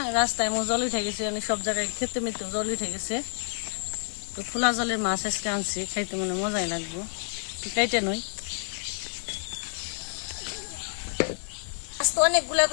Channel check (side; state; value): right; silent; digital silence